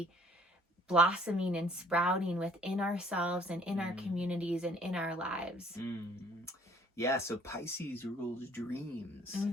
blossoming and sprouting within ourselves and in our communities and in our lives. Yeah, so Pisces rules dreams.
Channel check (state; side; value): normal; both; correlation 0.57